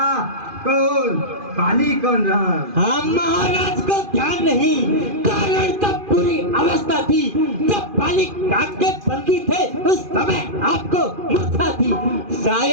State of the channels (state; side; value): late; left; 2.5 ms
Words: कौन पाली कौन राम। हाँ महाराज को ध्यान नहीं, कारण तब पूरी अवस्था थी जब पाली काट के बंदी थे, उस समय आपको मूर्छा थी।